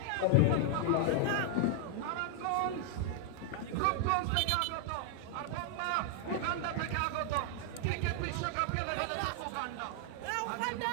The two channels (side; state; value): both; different; correlation 0.00